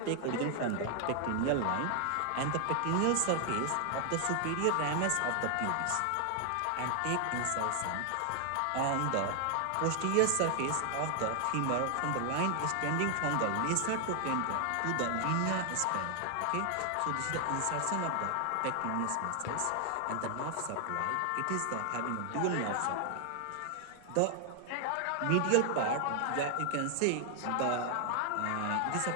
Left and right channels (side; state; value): both; different; correlation 0.00